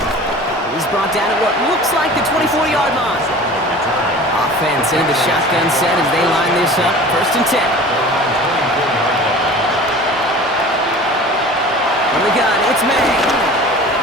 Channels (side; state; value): both; normal; correlation 0.41